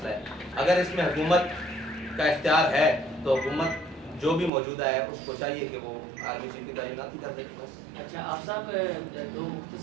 ہے. اگر اس میں حکومت کا اختیار ہے تو حکومت جو بھی موجودہ ہے اس کو چاہیے کہ وہ آرمی چیف کی تعیناتی کر دے. اچھا آپ صاحب، دو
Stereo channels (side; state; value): left; drops out; at 4.5 s